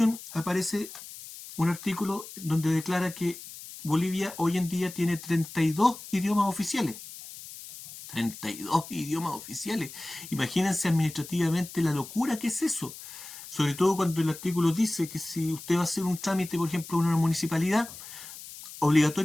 aparece un artículo donde declara que Bolivia hoy en día tiene 32 idiomas oficiales. 32 idiomas oficiales. Imagínense administrativamente la locura que es eso. Sobre todo cuando el artículo dice que si usted va a hacer un trámite, por ejemplo, en una municipalidad,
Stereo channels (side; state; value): left; noise; hiss, 14 dB below the sound